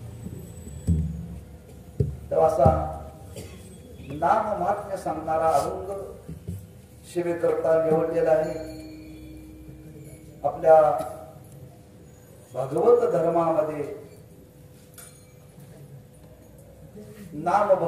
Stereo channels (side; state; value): both; identical; correlation 1.00